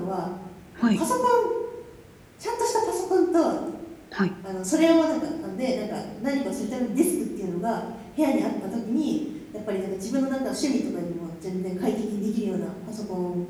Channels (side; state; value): both; identical; correlation 1.00